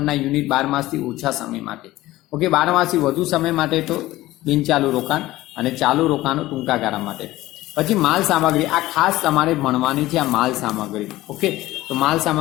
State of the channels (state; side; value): quieter; right; 17.0 dB